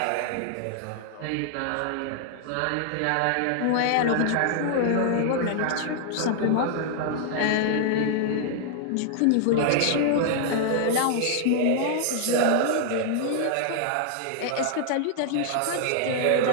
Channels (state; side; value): different; both; correlation 0.00